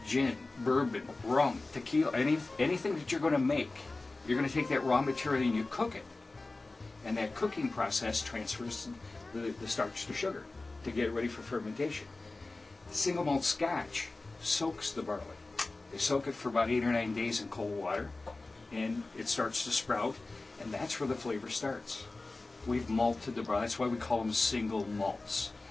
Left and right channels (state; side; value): quieter; right; 3.3 dB